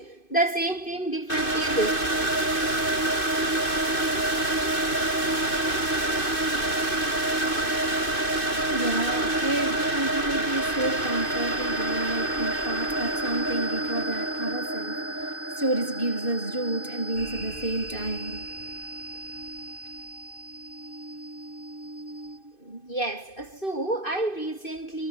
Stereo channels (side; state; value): right; late; 2.5 ms